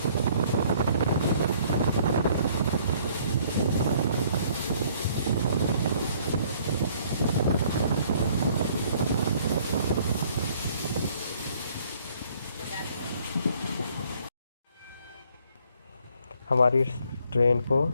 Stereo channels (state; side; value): inverted; both; correlation -0.61